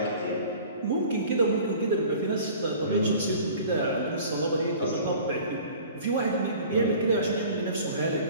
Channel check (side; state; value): both; inverted; correlation -0.45